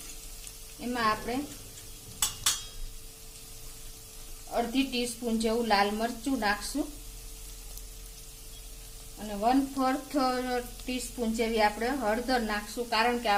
એમાં આપણે અડધી ટીસ્પૂન જેવું લાલ મરચું નાખશું અને 1/4 ટીસ્પૂન જેવી આપણે હળદર નાખશું, કારણ કે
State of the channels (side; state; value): both; identical; correlation 1.00